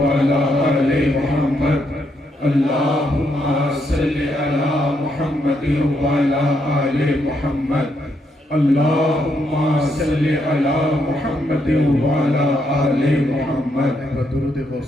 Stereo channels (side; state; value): both; normal; correlation 0.77